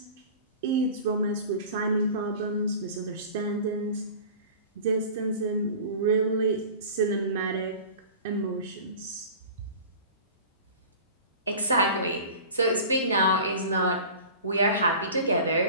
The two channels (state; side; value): inverted; both; correlation -0.39